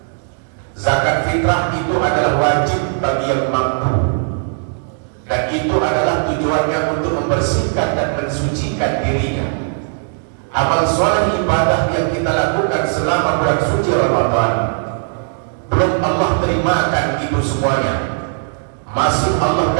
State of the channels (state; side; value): silent; left; digital silence